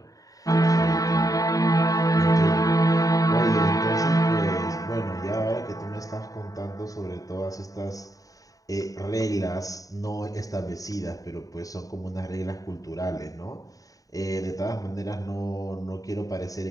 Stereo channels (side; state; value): right; late; 0.17 ms